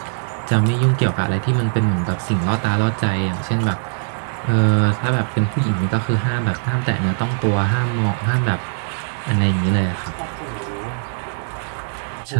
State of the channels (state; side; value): silent; left; digital silence